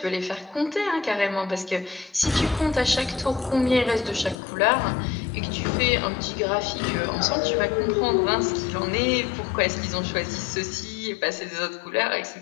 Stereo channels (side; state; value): right; drops out; at 4.4 s